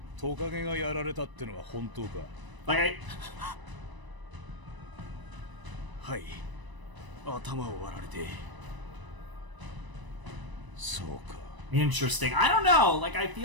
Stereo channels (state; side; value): late; left; 1.0 ms